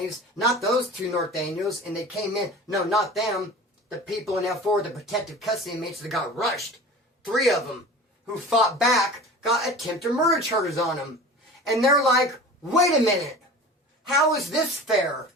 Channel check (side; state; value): both; normal; correlation 0.37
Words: Not those two Nortenos, and they came in. No, not them. The people in F4, the protective custody inmates that got rushed. 3 of them who fought back got attempted murder charges on them. And they're like, wait a minute. How is this fair?